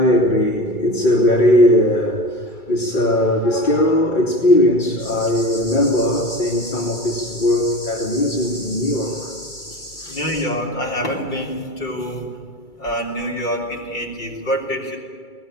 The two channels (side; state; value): right; late; 2.3 ms